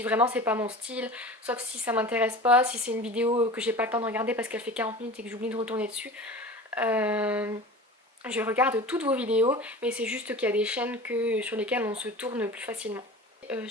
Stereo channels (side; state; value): both; normal; correlation 0.36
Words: vraiment c'est pas mon style. Sauf si ça m'intéresse pas. Si c'est une vidéo que j'ai pas le temps de regarder parce qu'elle fait 40 minutes et que j'oublie de retourner dessus. Je regarde toutes vos vidéos. Mais c'est juste qu'il y a des chaînes sur lesquelles on se tourne plus facilement.